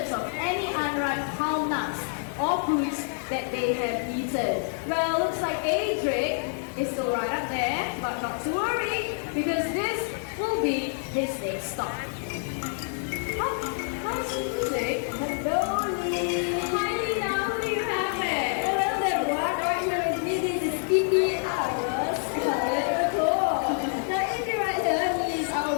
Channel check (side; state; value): right; silent; 60 dB below the other